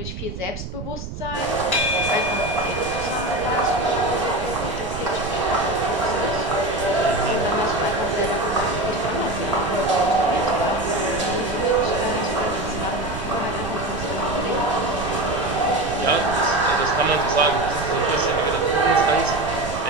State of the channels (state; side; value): noise; right; rumble, 9 dB below the sound